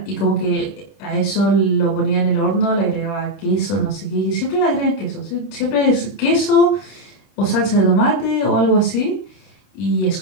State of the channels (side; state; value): right; late; 32 ms